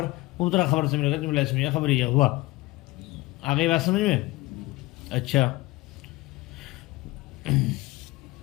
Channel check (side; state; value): right; quieter; 20.4 dB